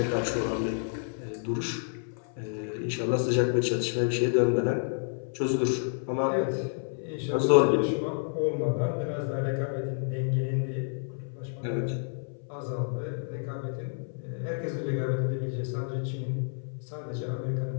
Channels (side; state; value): right; silent; 58 dB below the other